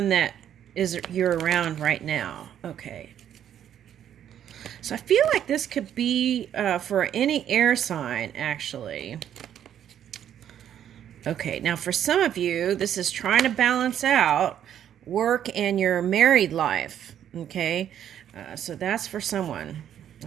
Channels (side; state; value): left; quieter; 10.0 dB